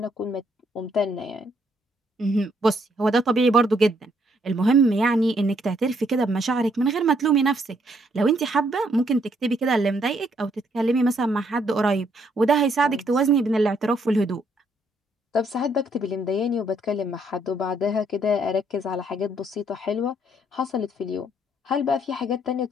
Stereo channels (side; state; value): both; normal; correlation 0.70